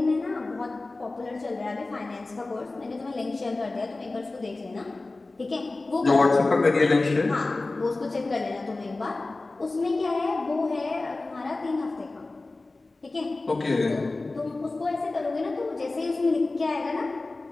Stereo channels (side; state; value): right; quieter; 3.2 dB